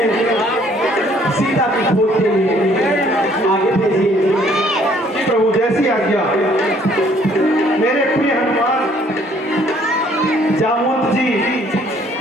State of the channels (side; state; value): both; normal; correlation 0.61